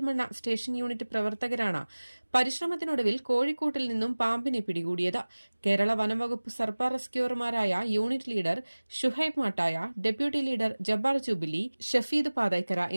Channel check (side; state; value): both; inverted; correlation -1.00